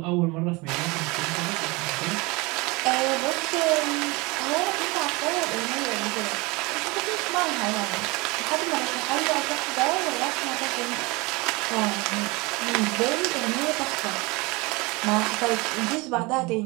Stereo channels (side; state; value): left; quieter; 25.0 dB